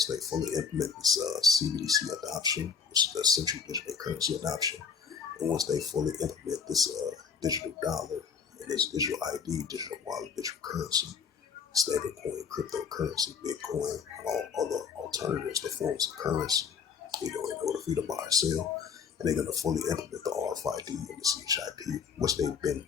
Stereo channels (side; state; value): right; quieter; 6.1 dB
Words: they fully implement this CBDC adoption, which is the central digital currency adoption, and once they fully implement this digital dollar and this digital ID, digital wallet, digital currency, stablecoin, cryptocurrency, Bitcoin, and all other alternatives to forms of currency, in order for you to buy or sell, and they're going to fully implement the RFID and the CHIP, which they've been